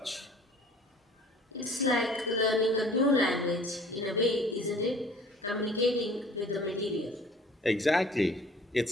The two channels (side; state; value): both; normal; correlation 0.50